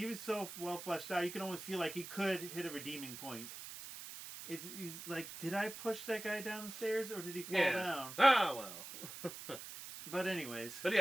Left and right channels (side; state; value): right; noise; hiss, 11 dB below the sound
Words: was so well fleshed out. You can almost feel like he could hit a redeeming point. He's like, did I push that guy down the stairs or did he fall down? Ah, well. But anyways. But